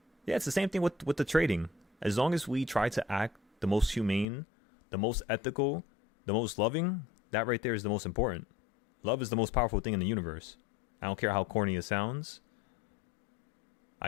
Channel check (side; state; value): right; drops out; at 4.2 s